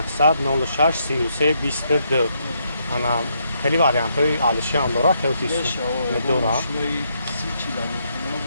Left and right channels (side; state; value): both; inverted; correlation -0.76